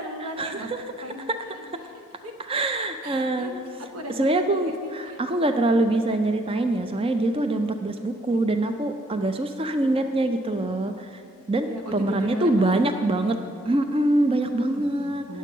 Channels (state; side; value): normal; both; correlation 0.67